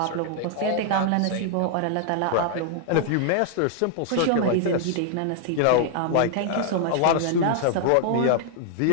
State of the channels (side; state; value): both; different; correlation 0.00